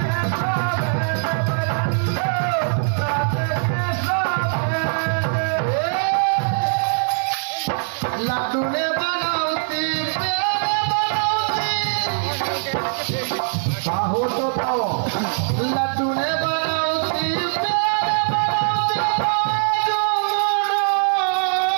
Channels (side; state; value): left; silent; digital silence